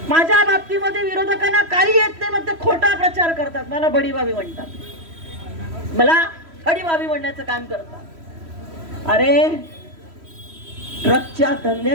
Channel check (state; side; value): late; left; 3.1 ms